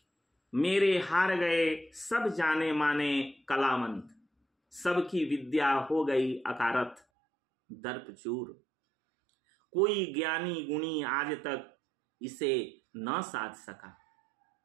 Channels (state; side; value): drops out; left; at 7.0 s